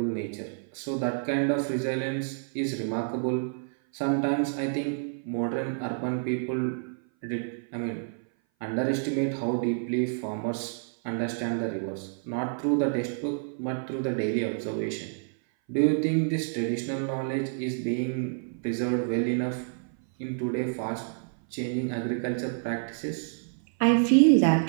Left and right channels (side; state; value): left; silent; 57 dB below the other